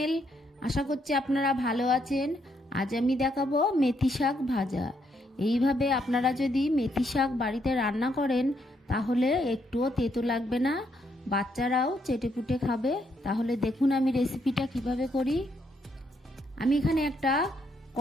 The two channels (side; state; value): both; normal; correlation 0.75